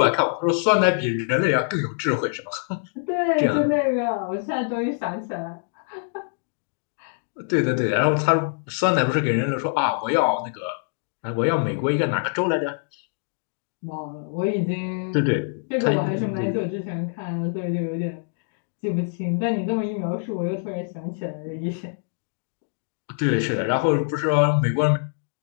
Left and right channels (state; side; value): silent; right; digital silence